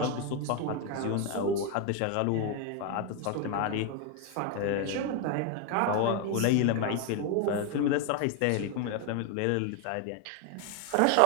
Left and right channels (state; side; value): different; both; correlation 0.01